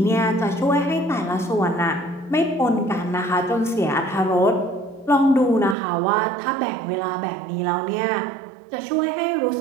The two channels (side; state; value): left; drops out; at 5.8 s